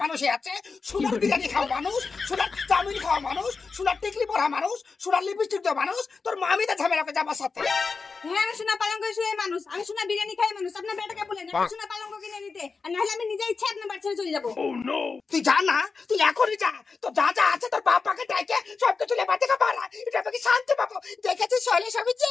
মানুষই আছে, সোনার বিরিয়ানি খাওয়া মানুষ, সোনার চাউমিন খাওয়া মানুষ, সোনার টিকলি পরা মানুষ, সোনার লিপস্টিক দেওয়া মানুষ। তোর মামি তো ঝামেলা করছে আমার সাথে। হ্যাঁ, আমি সোনা পালঙ্ক শুয়ে মানুষ, আমি সোনা বিরিয়ানি খাই মানুষ। আপনার বেটাকে বলেন আমি সোনা পালঙ্ক কিনে নিতে, আর নাহলে আমি নিজে ইচ্ছে আপনার বাড়ি ছেড়ে চলে যাবো। তুই যা না, তুই এখনই যা। তো যা যা আছে তোর বাপাকে ডাকে সবকিছু লেবার থেকে বাড়া, এটা আমাকে শান্তি পাবো। দেখেছিস শৈলা সবজি,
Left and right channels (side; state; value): right; quieter; 4.6 dB